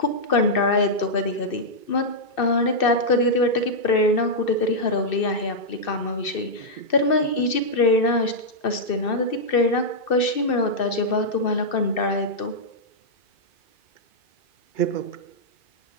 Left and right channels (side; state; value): right; late; 2.6 ms